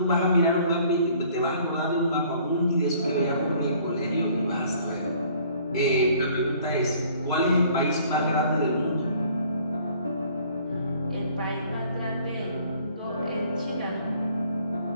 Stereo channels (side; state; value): both; inverted; correlation -0.56